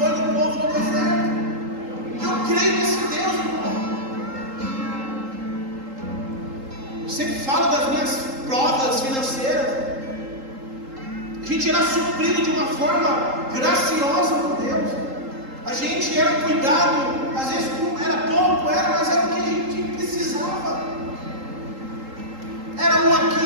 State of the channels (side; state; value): left; late; 3.8 ms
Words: no povo do deserto. Eu creio nesse Deus, irmão. Eu sempre falo das minhas provas financeiras. A gente era suprido de uma forma graciosa por Deus. A gente era cuidado, às vezes era pouco, mas era o que a gente precisava. Era um